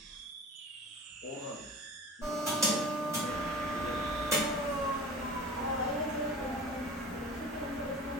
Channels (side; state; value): both; normal; correlation 0.38